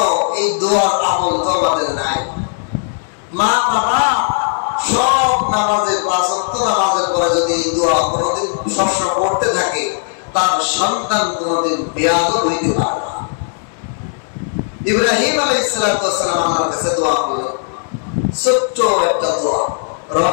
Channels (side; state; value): right; silent; 68 dB below the other